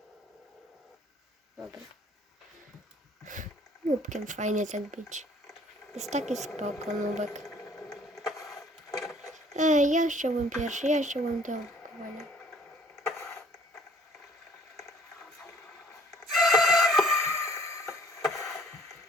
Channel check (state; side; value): normal; both; correlation 0.56